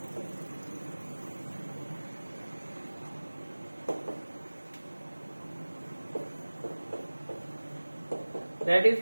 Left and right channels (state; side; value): inverted; both; correlation -1.00